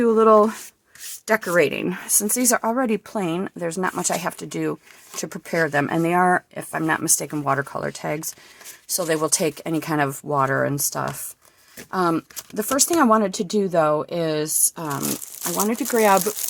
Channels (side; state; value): both; identical; correlation 1.00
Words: a little decorating. Since these are already plain, there's not much I have to do to prepare them. And they are, if I'm not mistaken, watercolor tags. So they will take any kind of water and stuff. The first thing I wanted to do, though, is I wanted to grab